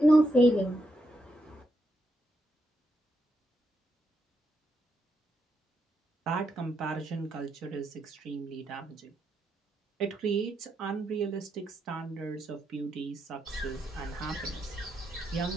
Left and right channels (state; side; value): normal; both; correlation 0.81